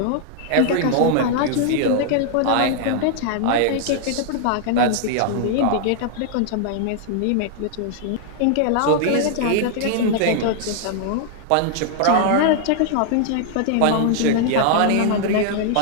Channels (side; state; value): both; different; correlation -0.01